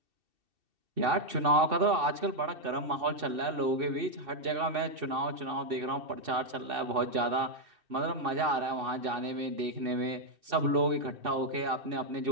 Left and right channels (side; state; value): left; late; 2.6 ms